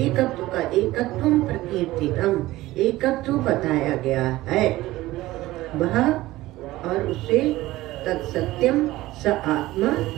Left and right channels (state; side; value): quieter; left; 17.3 dB